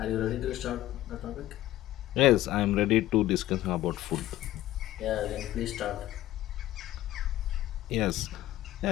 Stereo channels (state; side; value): quieter; right; 14.8 dB